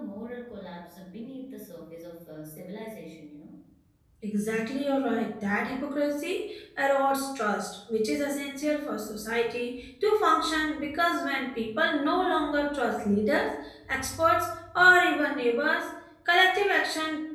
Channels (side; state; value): both; identical; correlation 1.00